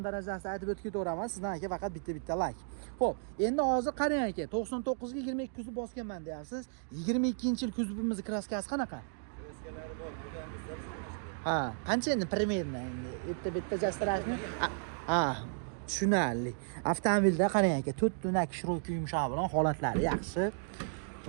darajasida aytib o'tib ketaveramiz. Sizdan aka faqat bitta like. Xo'p, endi hozir qarang aka, 99 ga 22 kuzov bosganman deyapsiz. 22-yil kuzovimiz kraskasi qanaqa? Kraskalari bor, bularmizda. Ha, qancha endi primerno endi bitta jastirashni? Ha, tushunarli. Avtomobilda qarang aka, 4 tunak shroki yumshoq bilan holatlari yaxshi.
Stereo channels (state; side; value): silent; left; digital silence